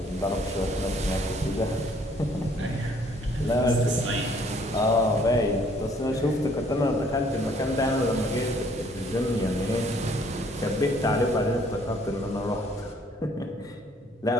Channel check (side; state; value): both; normal; correlation 0.62